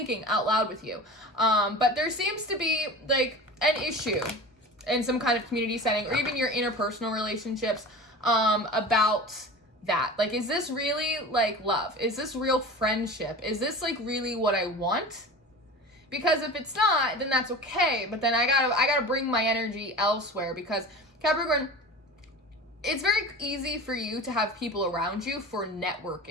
out loud with you. But there seems to be an issue in some kind of community setting or even your interpersonal relationships about that. Is this really love? Is this real friendship? Is this really what I want? Because if it's not, then that's okay. But then I gotta bring my energy elsewhere because Capricorn, it's very easy for you to have people around you for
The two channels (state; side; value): normal; both; correlation 0.35